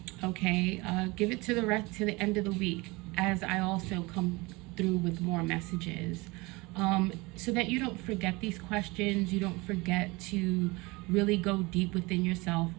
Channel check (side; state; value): left; quieter; 24.2 dB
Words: Okay, give it to the end of the week, as I also come through with more messages, so that you don't forget these questions. You don't forget to really go deep within yourself,